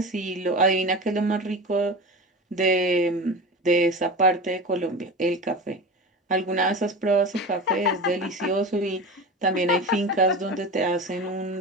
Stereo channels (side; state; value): both; normal; correlation 0.29